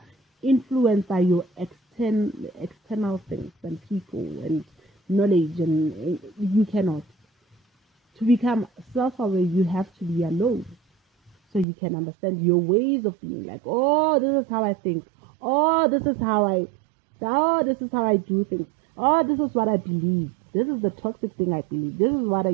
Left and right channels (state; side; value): drops out; left; at 11.7 s